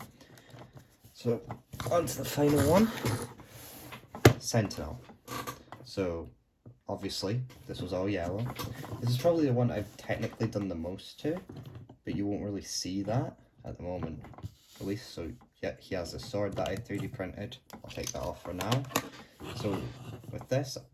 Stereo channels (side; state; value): both; identical; correlation 1.00